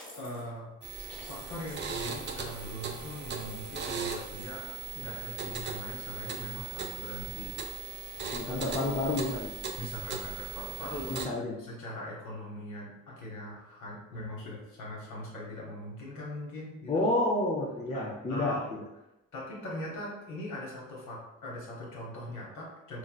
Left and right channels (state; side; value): normal; both; correlation 0.24